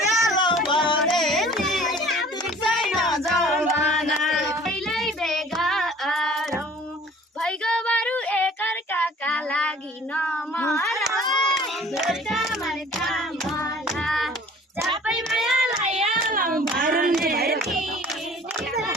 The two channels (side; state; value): both; normal; correlation 0.50